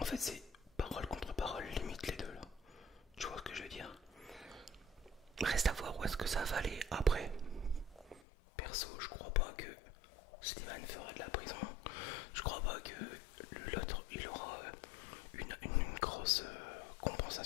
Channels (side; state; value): right; drops out; at 8.2 s